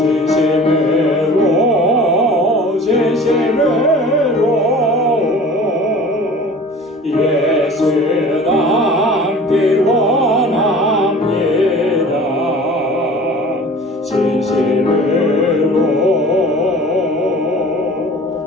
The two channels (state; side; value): normal; both; correlation 0.43